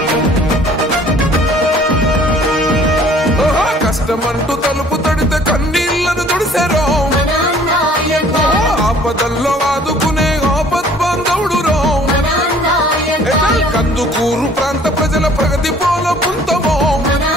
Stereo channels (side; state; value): both; normal; correlation 0.54